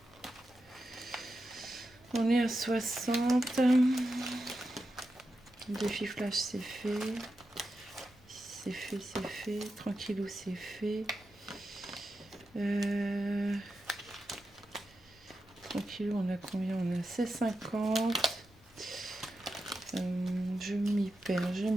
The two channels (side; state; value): both; normal; correlation 0.89